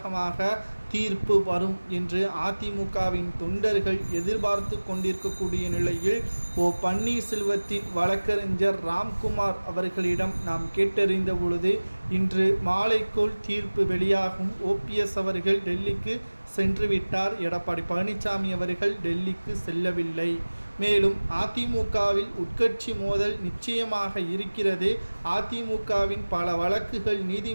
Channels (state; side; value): inverted; both; correlation -1.00